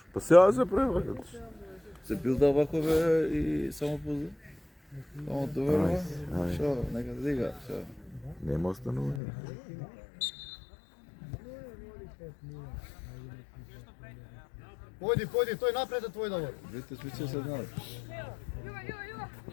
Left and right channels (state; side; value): drops out; right; at 9.2 s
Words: Па сега се превракат. Се билда вако бе и само позна. Само доверува. Ај. Шо, нека да дига, шо. Нема останување. Појди, појди, тој напред е твој Давор. Видите, смисла се знаат.